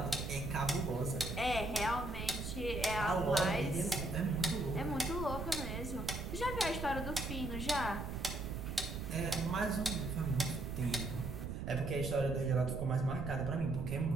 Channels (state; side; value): noise; right; rumble, 6 dB below the sound